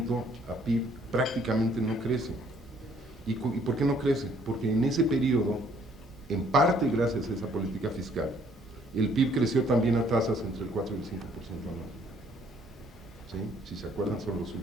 a PIB prácticamente no crece. ¿Y por qué no crece? Porque en ese periodo, en parte gracias a esa política fiscal, el PIB creció también a tasas entre el 4 y el 5% anual. ¿Sí? Si se acuerdan, son los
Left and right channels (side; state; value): both; normal; correlation 0.63